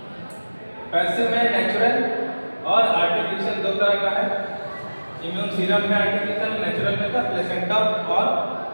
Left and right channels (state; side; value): inverted; both; correlation -1.00